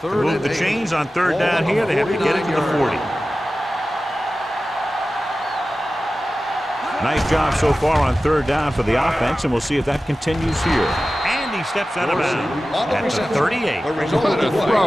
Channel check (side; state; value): both; normal; correlation 0.95